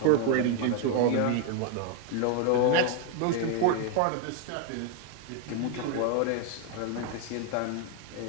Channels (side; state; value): both; different; correlation 0.00